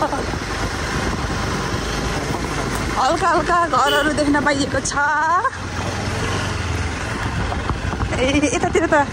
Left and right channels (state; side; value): identical; both; correlation 1.00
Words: हल्का घरहरू देख्न पाइएको छ। ए यतातिर त